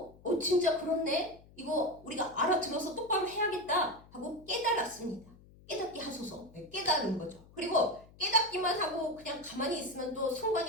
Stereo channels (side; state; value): left; noise; hum, 24 dB below the sound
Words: 진짜 그렇네? 이거 우리가 알아들어서 똑바로 해야겠다 하고 깨달았습니다. 깨닫게 하소서. 깨달은 거죠. 그리고 깨닫기만 하고 그냥 가만히 있으면 또